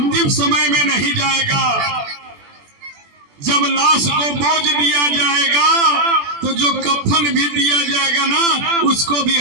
समय में नहीं जाएगा। जब लाश को बोझ दिया जाएगा तो जो कफन भी दिया जाएगा ना, उसको भी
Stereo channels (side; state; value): left; late; 21 ms